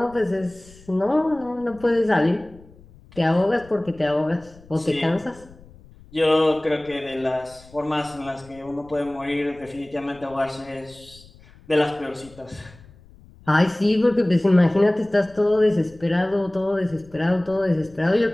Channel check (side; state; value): left; noise; rumble, 24 dB below the sound